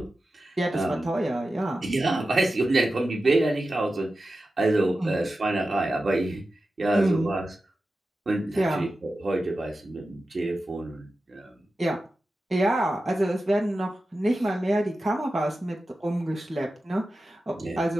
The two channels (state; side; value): normal; both; correlation 0.93